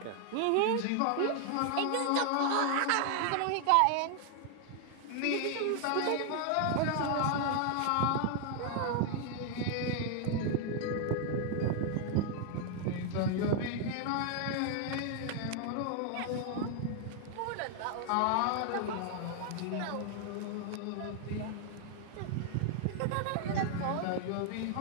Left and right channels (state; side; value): different; both; correlation 0.00